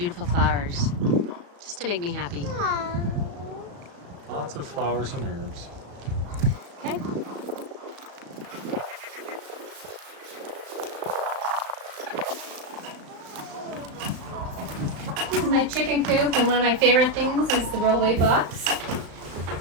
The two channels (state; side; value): late; left; 35 ms